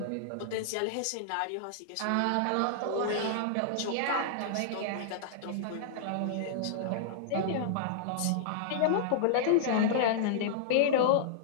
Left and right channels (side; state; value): both; different; correlation -0.01